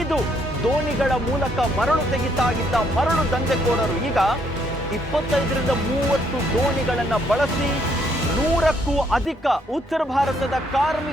ದೋಣಿಗಳ ಮೂಲಕ ಮರಳು ತೆಗಿತಾ ಇದ್ದ ಮರಳು ದಂಧೆಕೋರರು ಈಗ 25 ರಿಂದ 30 ದೋಣಿಗಳನ್ನ ಬಳಸಿ 100ಕ್ಕೂ ಅಧಿಕ ಉತ್ತರ ಭಾರತದ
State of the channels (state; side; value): normal; both; correlation 0.70